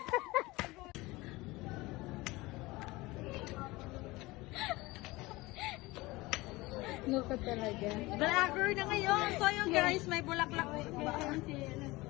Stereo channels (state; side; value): quieter; right; 21.3 dB